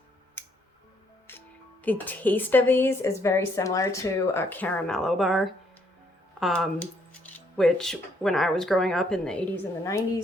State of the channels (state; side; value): normal; both; correlation 0.70